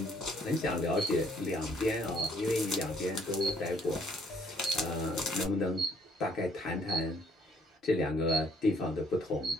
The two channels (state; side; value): normal; both; correlation 0.64